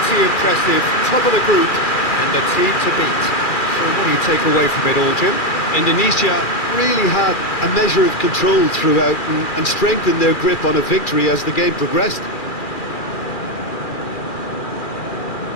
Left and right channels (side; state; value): right; late; 2.4 ms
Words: pretty impressive. Top of the group and the team to beat. So what do you take away from it all, Jim? Indonesia really had a measure of control throughout and strengthened their grip on a victory as the game progressed.